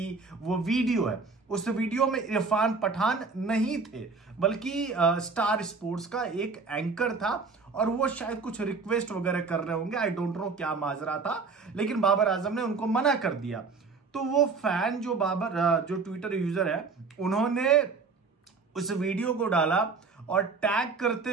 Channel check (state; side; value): quieter; left; 4.5 dB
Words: वो वीडियो है। उस वीडियो में इरफान पठान नहीं थे, बल्कि स्टार स्पोर्ट्स का एक एंकर था, और वो शायद कुछ रिक्वेस्ट वगैरह कर रहे होंगे। आई डोंट नो क्या माजरा था, लेकिन बाबर आजम ने उनको मना कर दिया। तो वो फैन जो ट्विटर यूजर है, उन्होंने उस वीडियो को डाला और टैग करते